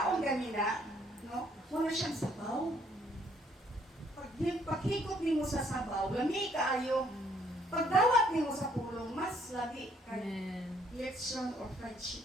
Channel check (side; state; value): both; normal; correlation 0.65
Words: ganina, no? Wala siyang sabaw. Paghigop mo sa sabaw, lami kaayo. Pagdawat mo sa pulong, mas lami kayo. Leksyon or